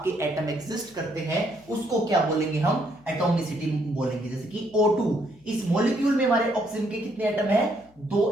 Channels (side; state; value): left; noise; hum, 29 dB below the sound